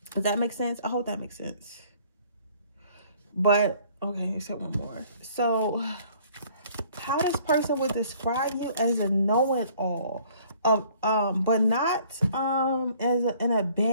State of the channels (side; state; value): both; inverted; correlation -0.57